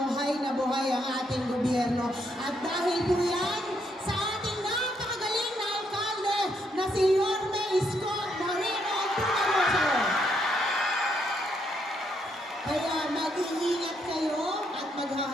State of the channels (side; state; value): both; normal; correlation 0.75